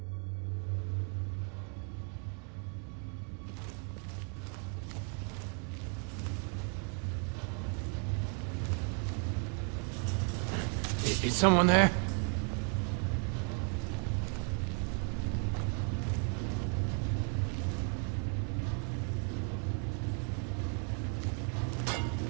Is someone there?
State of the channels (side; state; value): left; quieter; 39.4 dB